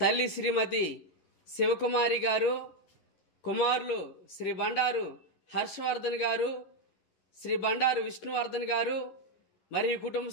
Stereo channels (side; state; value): right; late; 11 ms